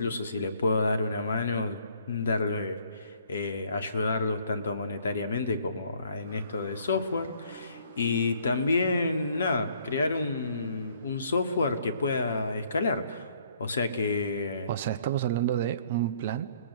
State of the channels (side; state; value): both; inverted; correlation -0.62